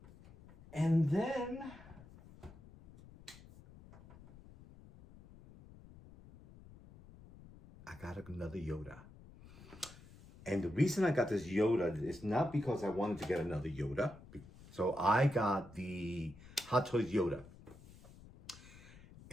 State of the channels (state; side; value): noise; left; rumble, 20 dB below the sound